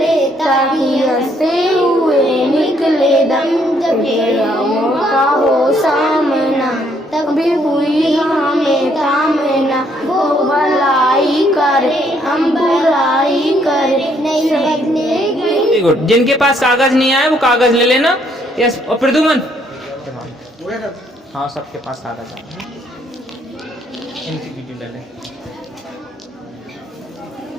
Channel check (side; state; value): both; normal; correlation 0.69